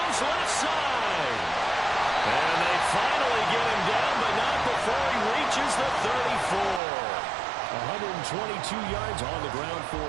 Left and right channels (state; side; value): drops out; left; at 6.8 s